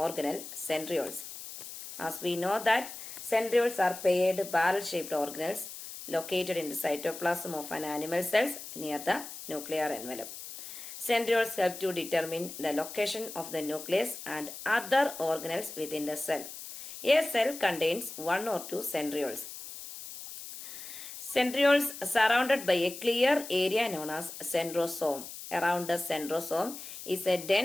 centrioles. As we know that centrioles are paired barrel-shaped organelles located in the cytoplasm of an animal cells near the nuclear envelope. Centrioles help to determine the location of the nucleus and other organelles within the cell. A cell contains one or two centrioles. Centrioles surrounded by a clear area known as centrosome. Around the centrosome is a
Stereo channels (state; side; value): noise; left; hiss, 11 dB below the sound